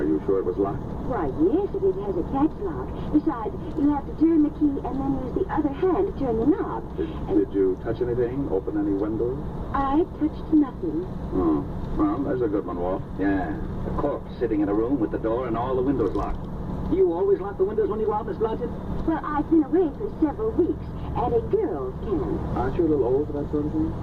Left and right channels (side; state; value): both; identical; correlation 1.00